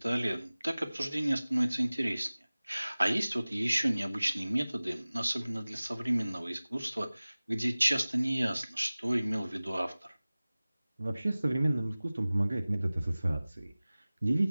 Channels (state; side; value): inverted; both; correlation -0.98